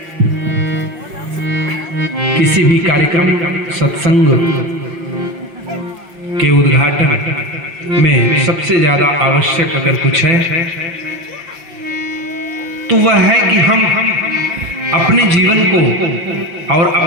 किसी भी कार्यक्रम सत्संग के उद्घाटन में सबसे ज्यादा आवश्यक अगर कुछ है तो वह है कि हम अपने जीवन को और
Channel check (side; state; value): left; late; 6.0 ms